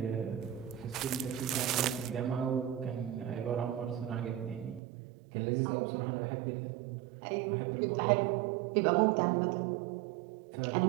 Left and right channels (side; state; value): left; drops out; at 4.8 s